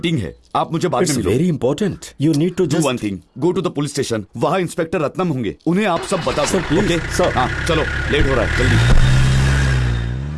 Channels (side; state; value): both; identical; correlation 1.00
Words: है। आप मुझे बाद में मिलो। Very important. You need to do one thing, go to the police station. वहाँ इंस्पेक्टर रत्नम होंगे, उन्हें आप सब बता सर, प्लीज। ओके? सर। हाँ चलो, लेट हो रहा है, जल्दी।